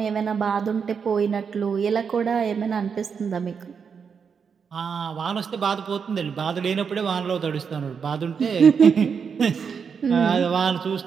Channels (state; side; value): quieter; left; 6.3 dB